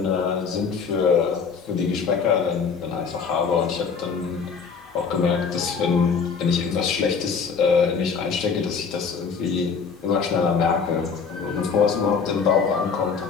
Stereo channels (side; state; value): right; quieter; 5.7 dB